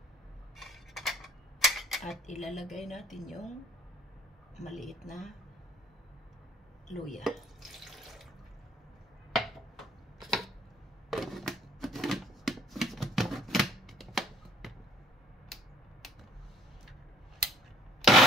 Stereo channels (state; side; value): normal; both; correlation 0.58